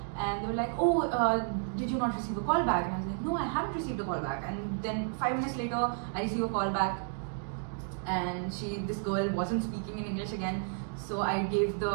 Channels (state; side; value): silent; left; 56 dB below the other